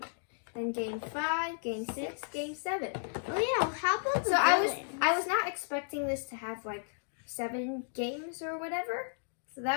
Then game 5, game 6, game 7. Oh yeah, how about the So villains? I was not expecting this to have like 7 games or whatever. So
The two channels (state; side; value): silent; right; digital silence